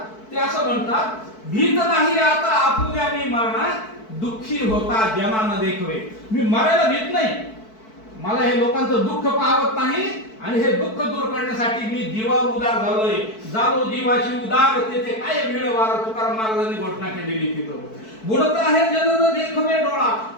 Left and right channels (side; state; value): right; late; 4.6 ms